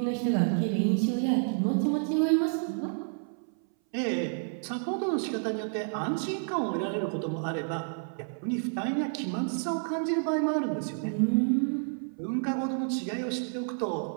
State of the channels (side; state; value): left; silent; 58 dB below the other